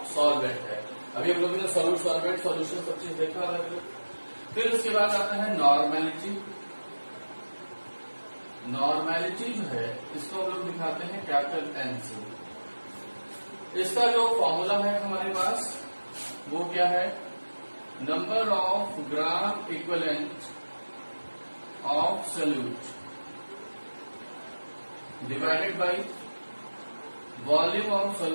सॉल्वेंट है। अभी हम लोगों ने सॉल्यूट, सॉल्वेंट, सॉल्यूशन सब चीज देखा अलग अलग। फिर उसके बाद आता है नॉर्मेलिटी। नॉर्मेलिटी जो है इसको हम लोग दिखाते हैं कैपिटल एन से। इसका जो फॉर्मूला है हमारे पास वो क्या है? Number of gram equivalent of solute divided by volume of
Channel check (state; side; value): inverted; both; correlation -1.00